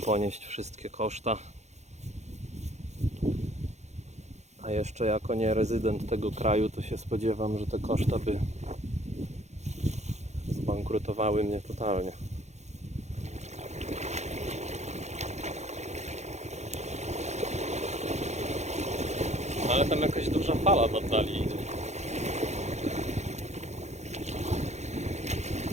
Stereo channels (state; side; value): late; left; 0.33 ms